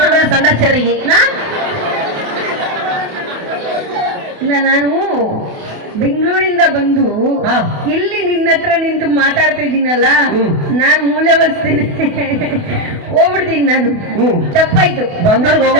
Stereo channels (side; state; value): left; late; 28 ms